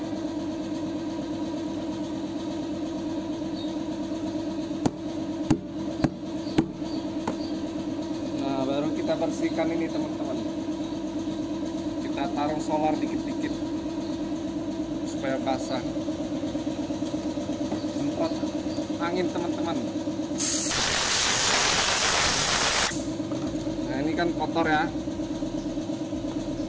Baru kita bersihkan ini teman-teman. Kita taruh solar dikit-dikit supaya basah. Semprot angin teman-teman. Nah, ini kan kotor ya.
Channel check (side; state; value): both; identical; correlation 1.00